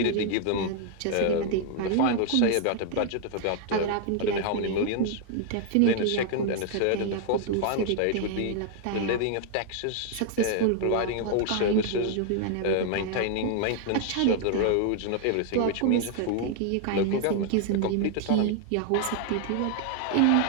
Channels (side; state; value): both; different; correlation 0.00